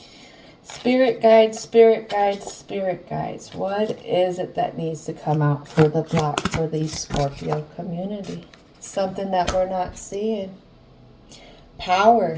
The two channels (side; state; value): both; identical; correlation 1.00